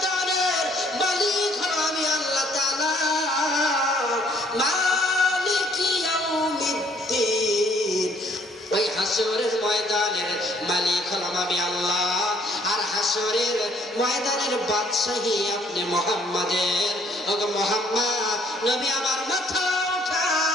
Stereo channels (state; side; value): normal; both; correlation 0.63